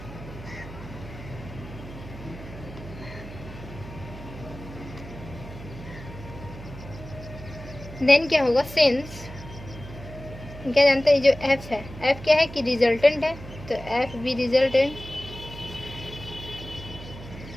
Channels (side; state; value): right; noise; hum, 14 dB below the sound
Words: देन क्या होगा, सिंस क्या जानते हैं जो एफ है, एफ क्या है कि रिजल्टेंट है, तो एफ भी रिजल्टेंट